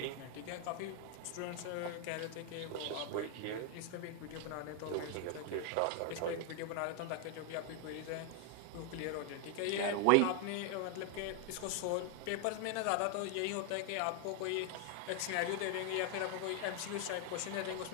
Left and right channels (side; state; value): both; different; correlation 0.00